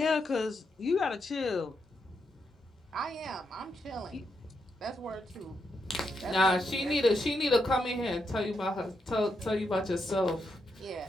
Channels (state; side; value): normal; both; correlation 0.82